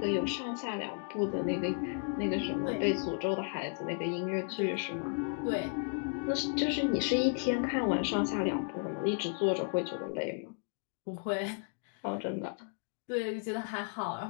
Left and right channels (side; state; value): right; silent; 55 dB below the other